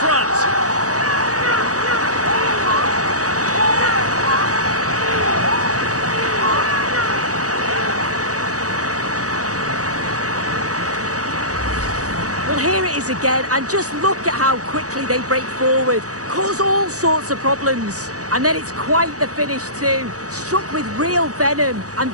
front. Well, here it is again, and just look at how quickly they break forward. Cause all sorts of problems. And then it's quite the finish too. Struck with real venom, and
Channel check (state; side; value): late; left; 0.66 ms